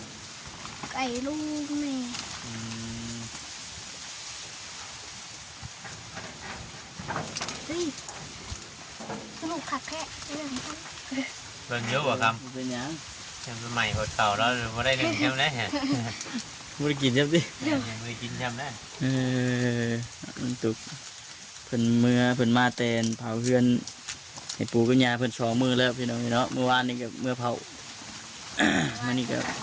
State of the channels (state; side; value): identical; both; correlation 1.00